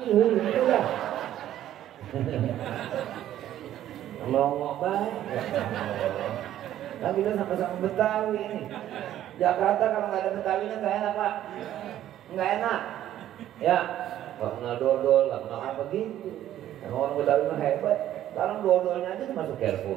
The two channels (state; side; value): quieter; left; 12.2 dB